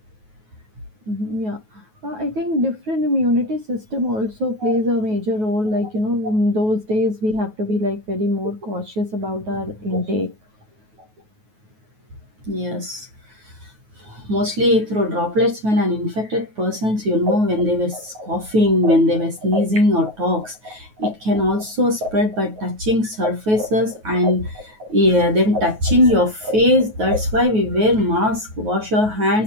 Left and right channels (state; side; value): late; left; 9.3 ms